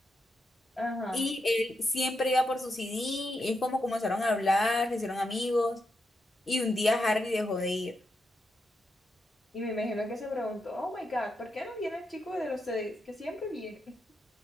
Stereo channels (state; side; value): normal; both; correlation 0.84